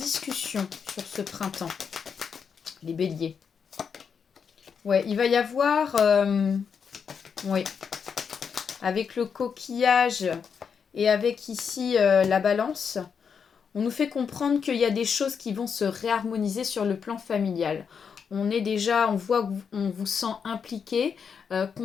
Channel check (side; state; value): right; quieter; 6.5 dB